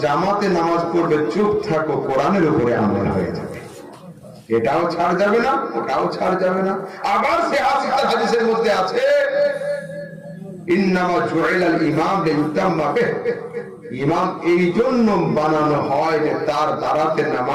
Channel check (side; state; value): both; identical; correlation 1.00